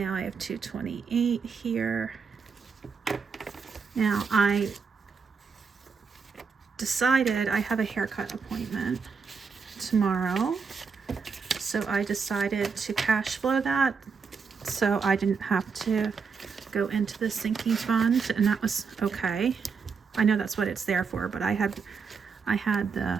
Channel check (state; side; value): quieter; left; 5.6 dB